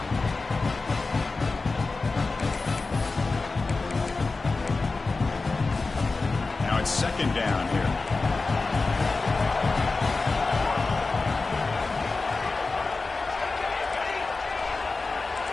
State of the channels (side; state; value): right; quieter; 3.8 dB